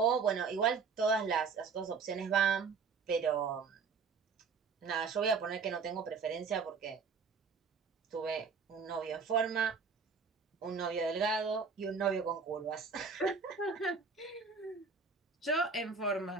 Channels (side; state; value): left; quieter; 5.2 dB